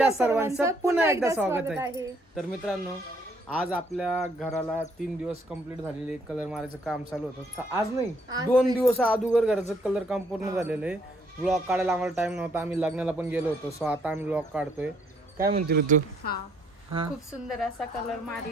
सर्वांचं पुन्हा एकदा स्वागत आहे। तर मित्रांनो, आज आपल्या घराला 3 दिवस कंप्लीट झालेले कलर मारायचं काम चालू होतं। आज नाही 2 दिवस अगोदर घराचं कलर काम पूर्ण झालेलं आहे। व्लॉग काढायला आम्हाला टाइम नव्हता, आम्ही लग्नाला पण गेलो होतो, सो आता आम्ही व्लॉग काढतोय। काय म्हणते ऋतू? खूप सुंदर असा कलर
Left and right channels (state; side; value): normal; both; correlation 0.67